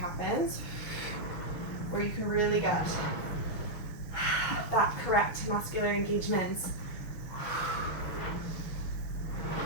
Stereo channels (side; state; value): right; late; 6.4 ms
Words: where you can really get that correct muscular engagement.